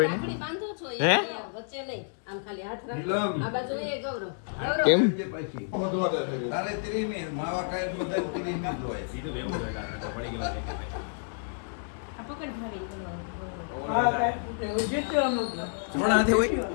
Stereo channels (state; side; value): silent; right; digital silence